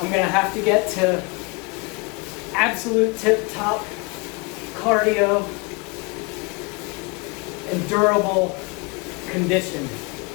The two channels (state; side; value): quieter; right; 28.5 dB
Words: going to have to get to absolute tip-top cardio and durable condition,